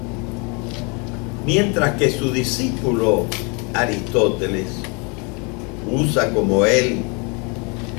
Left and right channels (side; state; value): right; quieter; 32.3 dB